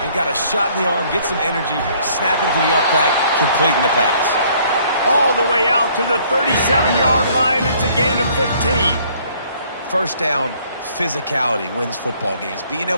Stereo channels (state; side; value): inverted; both; correlation -0.61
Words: and got a shot in the arm, get some energy, snap into the up back, completing the pass. All the way out to the 37-yard line. It's a gain of 15. First down, physicality wins football games. Being